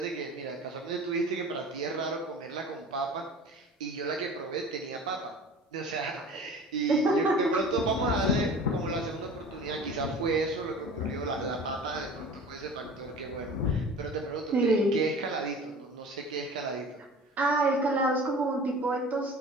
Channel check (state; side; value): normal; both; correlation 0.40